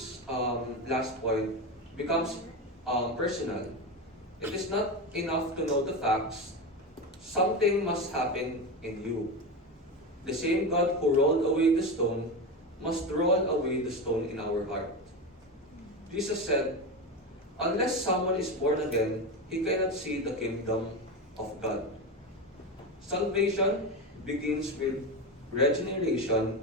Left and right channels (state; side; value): normal; both; correlation 0.19